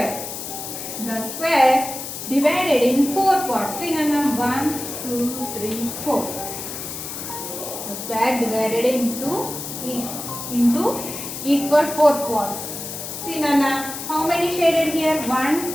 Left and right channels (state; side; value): noise; left; hiss, 8 dB below the sound